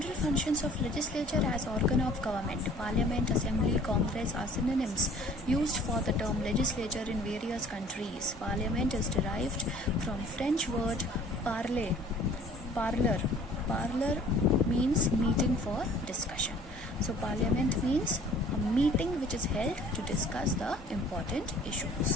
functions of legislature as organ of government. Parliament, assembly, congress are synonyms used for the term legislature in various countries. Parliament is derived from French word parler. Parlor means meeting for discussion. So parliament means a meeting which is held to discuss the important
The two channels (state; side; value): normal; both; correlation 0.52